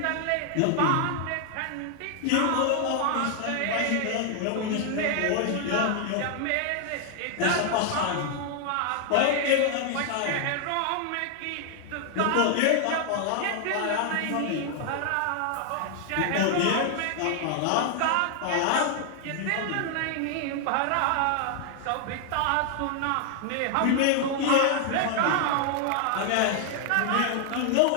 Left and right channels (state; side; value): different; both; correlation 0.00